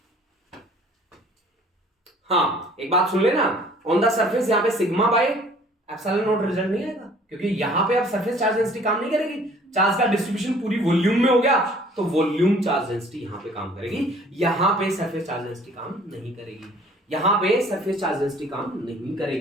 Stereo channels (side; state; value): both; normal; correlation 0.54